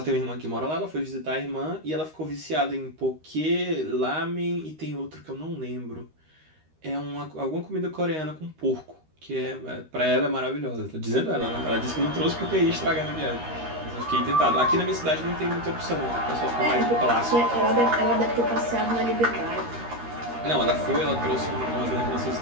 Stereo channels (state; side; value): late; left; 13 ms